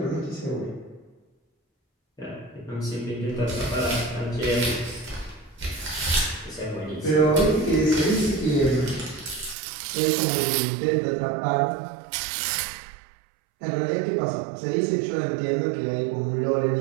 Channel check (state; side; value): drops out; left; at 9.6 s